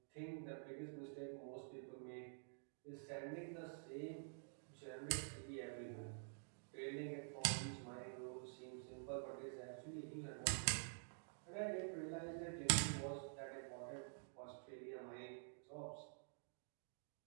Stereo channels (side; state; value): left; silent; digital silence